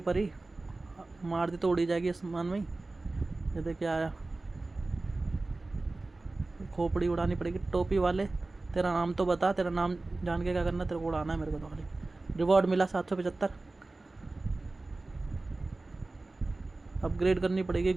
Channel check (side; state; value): left; quieter; 3.2 dB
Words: परी। मार दी तो उड़ी जाएगी आसमान में ही। ये देख क्या आया। खोपड़ी उड़ानी पड़ेगी। टोपी वाले, तेरा नाम तो बता। तेरा नाम जान के क्या करना, तेरे को उड़ाना है मेरे को तो खाली। रिवॉर्ड मिला 775। अपग्रेड करनी पड़ेगी।